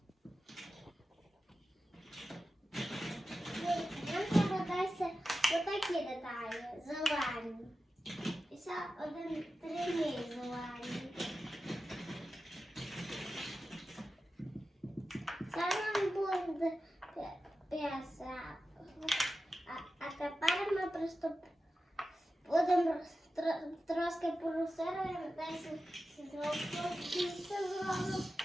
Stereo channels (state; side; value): normal; both; correlation 0.93